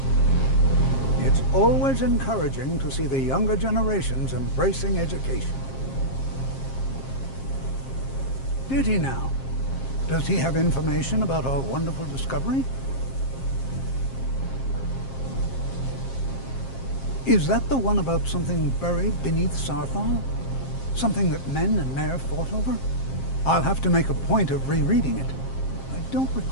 Always encouraging to see the younger generations embracing education. Did he now? Does he have information about our wonderful discovery? Is that the one about something buried beneath Sarthal? Something that men and Mare fought over? I'll have to make a point of rereading it. I don't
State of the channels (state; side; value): late; right; 7.5 ms